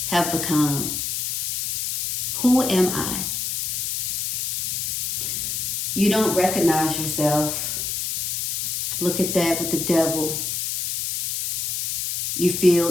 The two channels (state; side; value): noise; left; hiss, 1 dB below the sound